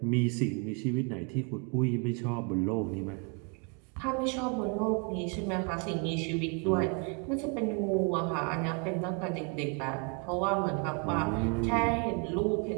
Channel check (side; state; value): left; quieter; 34.2 dB